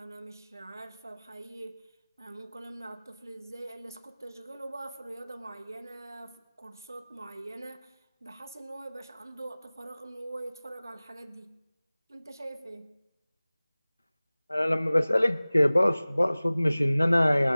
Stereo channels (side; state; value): both; inverted; correlation -0.99